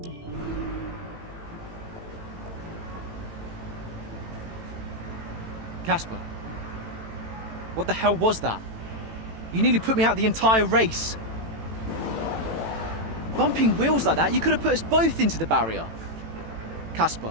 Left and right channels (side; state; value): left; late; 18 ms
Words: Casper, what the hell was that? You nearly put me out the entire race. Bumping wheels like that, you could have put us both into the barrier. Casper,